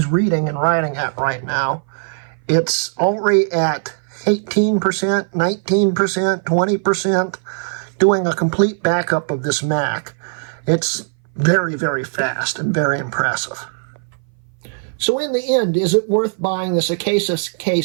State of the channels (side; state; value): left; silent; 60 dB below the other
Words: reading and writing at right now. It's already at 18%, 19%, 20%, doing a complete backup of this Mac. It's very, very fast and very impressive. So in the end, is it worth buying this Acasis